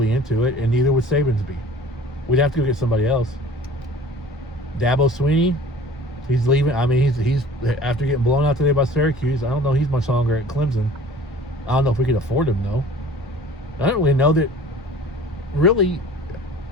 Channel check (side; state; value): both; normal; correlation 0.46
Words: into it, and neither would Saban's be. We'd have to go get somebody else. Dabo Swinney, he's leaving. I mean, he's after getting blown out today by Syracuse. I don't know he's much longer at Clemson. I don't know if we could afford him, though. I don't really know that. Really,